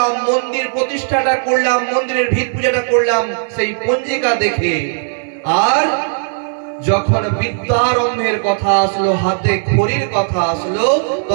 মন্দির প্রতিষ্ঠাটা করলাম, মন্দিরের ভিত পূজাটা করলাম সেই পঞ্জিকা দেখে। আর যখন বিদ্যারম্ভের কথা আসলো, হাতে খড়ির কথা আসলো,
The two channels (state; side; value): silent; left; 69 dB below the other